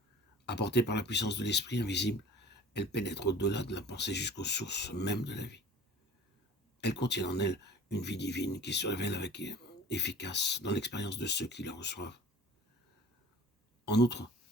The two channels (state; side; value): normal; both; correlation 0.45